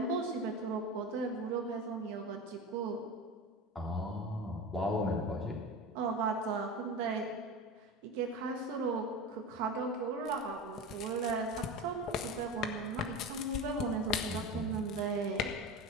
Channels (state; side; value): normal; both; correlation 0.27